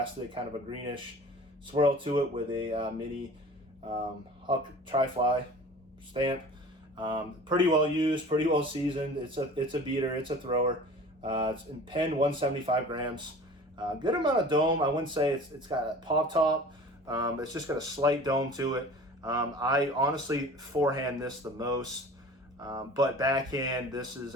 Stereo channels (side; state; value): both; normal; correlation 0.42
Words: kind of a greenish swirl to it with a mini Huck Tri-Fly stamp. Pretty well used, pretty well seasoned. It's a beater, it's a thrower. It's in pen 175 grams. Good amount of dome. I wouldn't say it's got a pop top. It's just got a slight dome to it. I honestly forehand this the most, but backhand this is